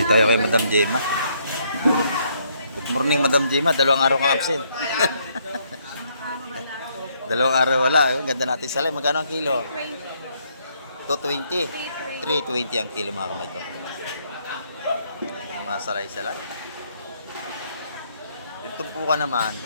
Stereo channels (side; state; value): both; inverted; correlation -0.71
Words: tayo kay Madam Gemma. Good morning, Madam Gemma. Dalawang araw kang absent. Dalawang araw wala. Ang ganda natin salay. Magkano ang kilo? 220. 320 ang kilo, mga kamay ko. Mga salay-salay. Yung tumpukan naman,